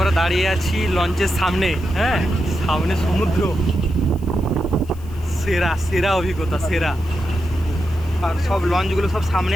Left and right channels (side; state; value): left; noise; hiss, 25 dB below the sound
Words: দাঁড়িয়ে আছি লঞ্চের সামনে। হ্যাঁ, সামনে সমুদ্র। সেরা সেরা অভিজ্ঞতা, সেরা। আর সব লঞ্চগুলো সব সামনে